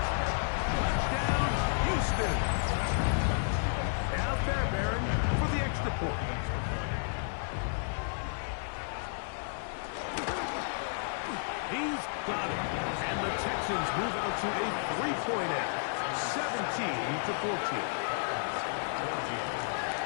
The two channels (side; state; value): right; silent; digital silence